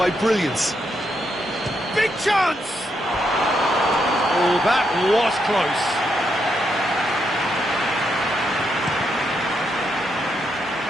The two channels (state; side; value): normal; both; correlation 0.80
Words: brilliance. Big chance! Oh, that was close.